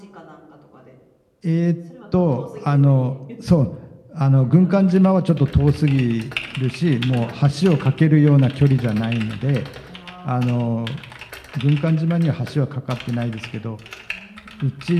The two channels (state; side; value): identical; both; correlation 1.00